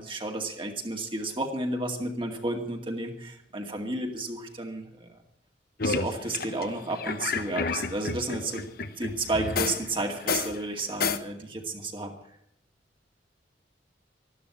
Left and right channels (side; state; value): both; normal; correlation 0.33